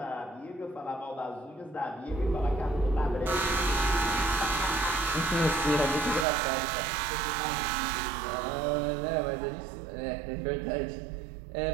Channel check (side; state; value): left; drops out; at 6.2 s